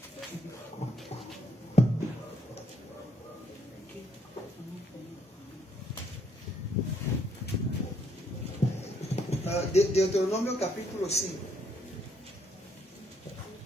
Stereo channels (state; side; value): normal; both; correlation 0.70